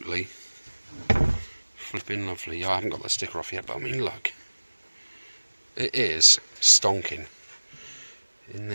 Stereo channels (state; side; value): inverted; both; correlation -1.00